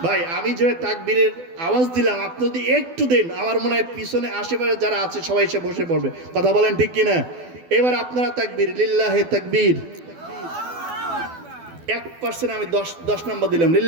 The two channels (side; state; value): left; late; 12 ms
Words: ভাই আমি যে তাকবীরের আওয়াজ দিলাম, আপনি যদি একটু দেন আমার মনে হয় পিছনে আশেপাশে যারা আছে সবাই এসে বসে পড়বে। কথা বলেন ঠিক কিনা? এবার আপনারা তাকবীর, লিল্লাহে তাকবীর। 1% আমি 10 নম্বর দিলাম,